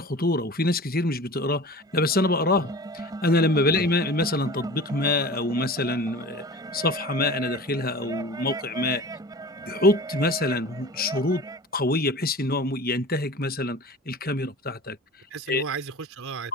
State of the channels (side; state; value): both; normal; correlation 0.37